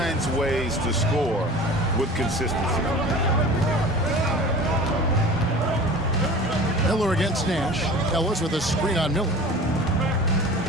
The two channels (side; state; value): both; normal; correlation 0.40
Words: ways to score with consistency. Miller against Nash. Ellis with a screen on Miller.